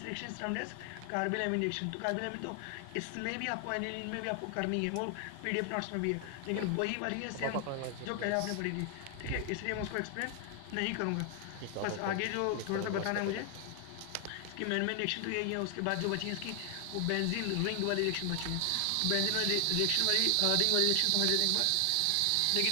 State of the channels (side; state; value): both; different; correlation 0.00